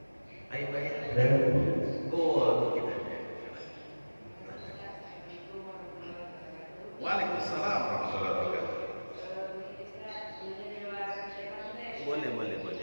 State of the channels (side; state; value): both; inverted; correlation -1.00